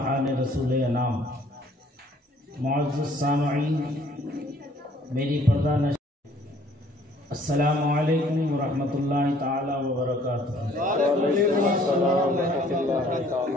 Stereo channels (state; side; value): normal; both; correlation 0.58